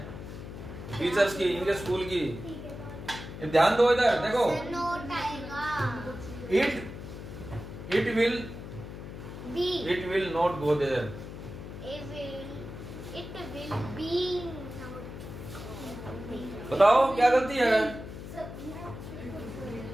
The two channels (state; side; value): noise; left; hum, 10 dB below the sound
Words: टीचर्स की, इनके स्कूल की। ध्यान दो इधर, देखो। It will not go there. It will be बताओ क्या गलती है?